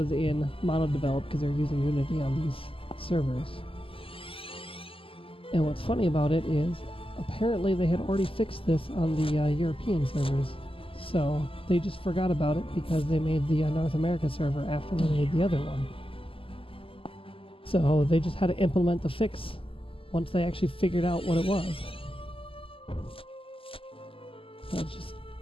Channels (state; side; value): late; right; 0.26 ms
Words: in mono-develop because they're using Unity on these servers. And what's funny about it is apparently they had already fixed this on the European servers. So they just forgot about it because they made the North America server after they made the other one. So they just had to implement the fix once they actually figured out what it was. That's just